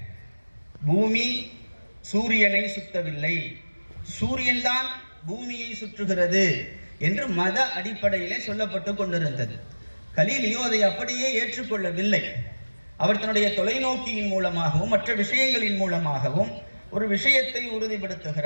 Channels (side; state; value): both; inverted; correlation -1.00